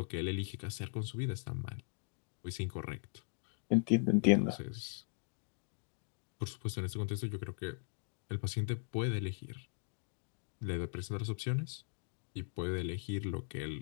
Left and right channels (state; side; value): silent; right; 52 dB below the other